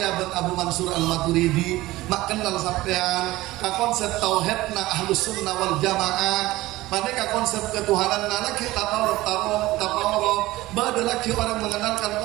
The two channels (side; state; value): left; quieter; 17.9 dB